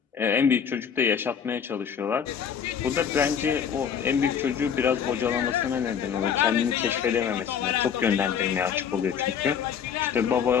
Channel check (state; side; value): quieter; right; 7.7 dB